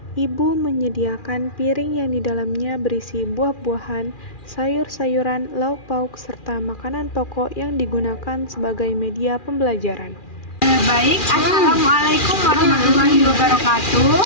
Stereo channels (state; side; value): late; right; 2.4 ms